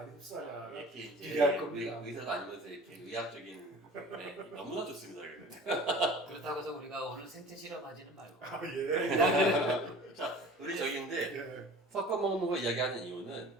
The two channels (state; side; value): normal; both; correlation 0.43